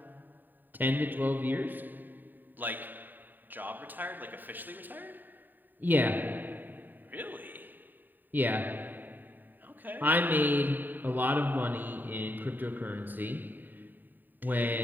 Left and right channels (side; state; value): left; late; 0.090 ms